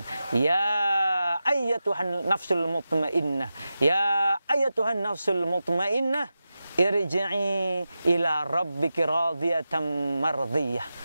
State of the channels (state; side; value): inverted; both; correlation -0.92